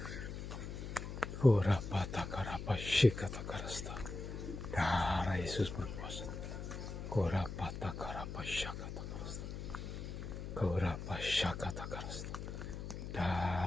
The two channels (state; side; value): noise; left; hum, 7 dB below the sound